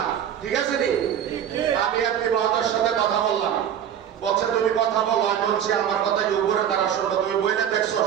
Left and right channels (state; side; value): quieter; left; 9.4 dB